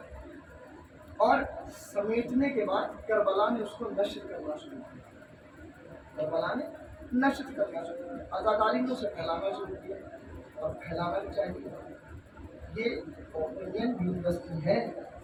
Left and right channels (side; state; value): both; identical; correlation 1.00